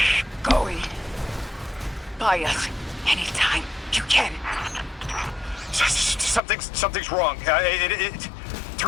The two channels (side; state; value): right; drops out; at 6.4 s